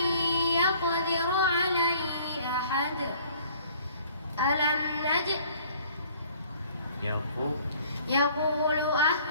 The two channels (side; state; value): both; inverted; correlation -0.55